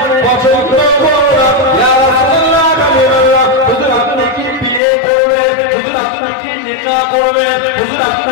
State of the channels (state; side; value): drops out; right; at 4.8 s